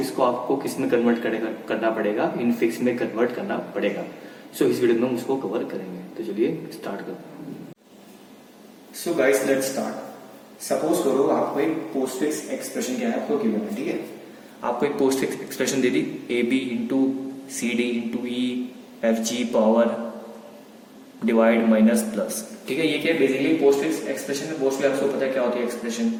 को आपको किस में कन्वर्ट करना पड़ेगा, इनफिक्स में कन्वर्ट करना पड़ेगा। सो इस वीडियो में हम उसको कवर करेंगे। तो चलिए स्टार्ट करो। So guys let's start. Suppose करो आपको एक पोस्ट फिक्स एक्सप्रेशन क्या है आपको गिवन है, ठीक है। आपको एक पोस्ट फिक्स एक्सप्रेशन दे दी, A B into C D into E F G power divide minus plus, ठीक है। ये क्या है बेसिकली पोस्ट फिक्स एक्सप्रेशन में मोस्टली आपको पता है क्या होती है एक्सप्रेशन,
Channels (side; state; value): both; identical; correlation 1.00